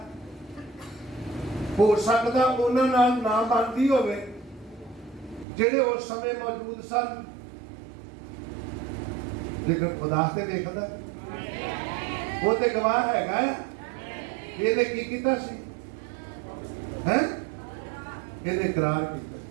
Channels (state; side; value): drops out; left; at 5.5 s